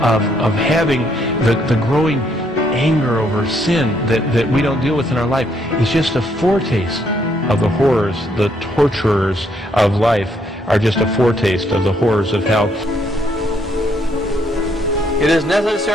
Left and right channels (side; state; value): both; normal; correlation 0.71